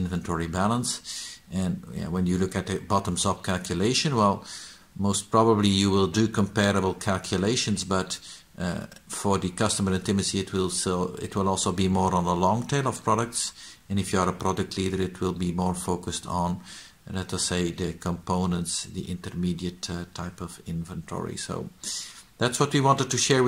balance. And when you look at the bottoms-up calculation, well, most probably you will do comparable calculations, but for the customer intimacy, it will also be more on a long tail of products. And if you are a product leader, it will be more focused on, let us say, the components, the intermediate type of inventory. So that's what we wanted to share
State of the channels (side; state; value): both; identical; correlation 1.00